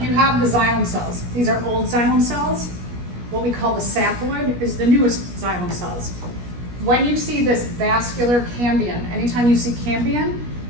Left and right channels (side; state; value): left; late; 17 ms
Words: you have the xylem cells. These are old xylem cells. What we call the sapwood is the newest xylem cells. When you see this vascular cambion, anytime you see cambion